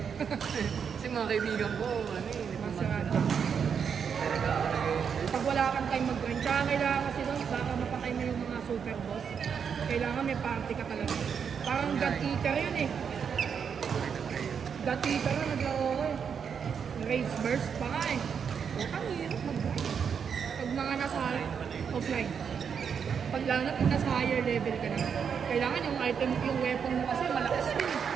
Kasi mga mga kaibigan ko, ano eh, hindi pa Masarado. talaga ako Pag wala kang time mag-grind, tsaka kailangan kasi doon, baka mapatay mo yung mga super boss. Kailangan may party ka talaga. Parang God Eater yun eh. God Eater na naglaro ko eh. Rage burst pa nga eh. Ang hirap mag-grind. Pag mga nasa offline. Pag lalo na pag nasa higher level ka na. Kailangan yung item, yung weapon mo kasi malakas din eh.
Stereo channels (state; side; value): quieter; left; 7.0 dB